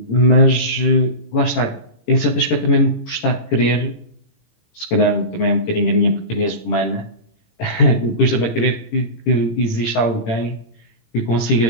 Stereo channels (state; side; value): late; right; 18 ms